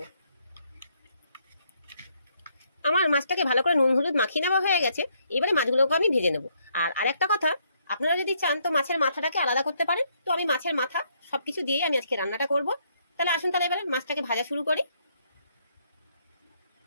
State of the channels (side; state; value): both; inverted; correlation -0.72